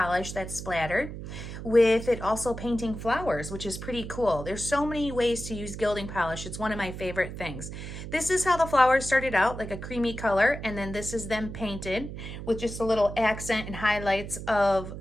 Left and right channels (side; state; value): right; noise; hum, 9 dB below the sound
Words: that's splattered, with it also painting flowers, which is pretty cool. There's so many ways to use gilding polish. It's one of my favorite things. This is how the flowers started out, like a creamy color, and then this is them painted with just a little accent and highlights of